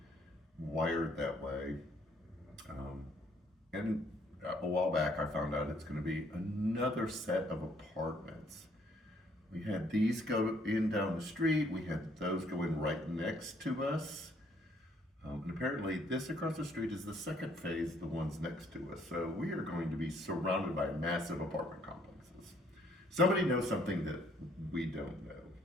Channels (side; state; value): both; normal; correlation 0.65